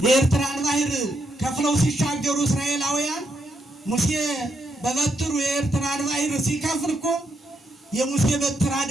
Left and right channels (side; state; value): both; normal; correlation 0.79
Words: የኤርትራን ባህር ከፍለው ሲሻገሩ እስራኤላውያን ሙሴ በበትሩ የኤርትራን ባህር ሲከፍል እኮ የሙሴ በትር